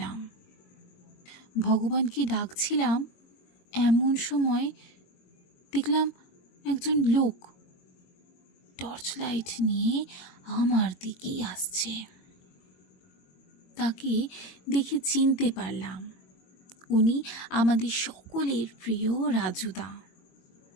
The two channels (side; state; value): right; late; 22 ms